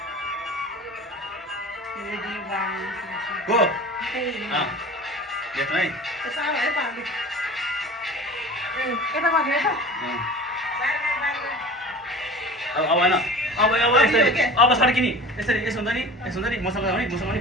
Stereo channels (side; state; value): both; normal; correlation 0.39